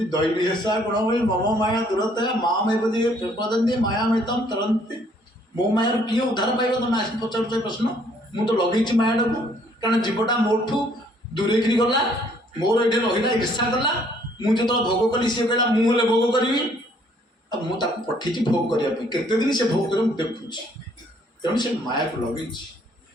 ଦୈବୀ ହେସା ଗୁଣମୟୀ ମମ ମାୟା ଦୁରତ୍ୟା ମାମୈବ ୟେ ପ୍ରପଦ୍ୟନ୍ତେ ମାୟାମେତାଂ ତରନ୍ତି। ମୋ ମାୟାରୁ କିଏ ଉଦ୍ଧାର ପାଇବ? ତମେ ଆସି ପଚାରୁଛ ପ୍ରଶ୍ନ। ମୁଁ ତ ଲଗେଇଛି ମାୟାଟାକୁ, କାରଣ ଜୀବଟା ମୋଠୁ ଦୂରେଇକିରି ଗଲା, ମୋର ଏଠି ରହିଲା, ଈର୍ଷା କଲା। ମୁଁ ଯେତେବେଳେ ଭୋଗ କଲି ସିଏ କହିଲା ମୁଁ ହେଲେ ଭୋଗ କରିବି, ଆଉ ମୁଁ ତାକୁ ପଠେଇଛି ଭୋଗ କରିବା ପାଇଁ। କେତେ ଦିନ ସେ ଭୋଗ କରିବ ମୁଁ ଦେଖୁଛି, ତେଣୁ ସେ ମାୟାକୁ ଲଗେଇଛି।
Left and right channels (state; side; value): normal; both; correlation 0.63